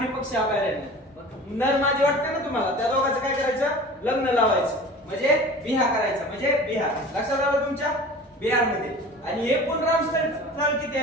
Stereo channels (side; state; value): both; normal; correlation 0.40